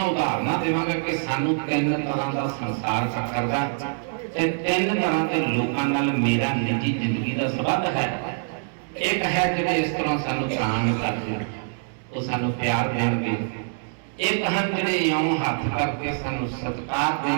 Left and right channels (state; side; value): silent; left; 59 dB below the other